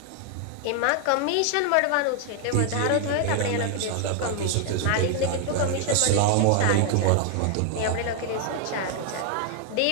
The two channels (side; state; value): both; different; correlation 0.00